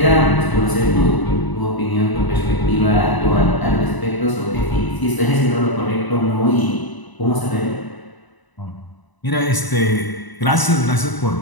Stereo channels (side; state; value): right; late; 1.0 ms